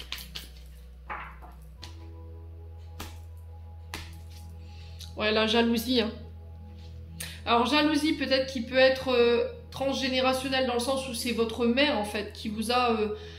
Ouais, la jalousie. Hein. Alors, jalousie, peut-être qui peut être transgénérationnelle dans le sens où c'est votre mère, en fait, qui vous a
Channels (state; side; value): identical; both; correlation 1.00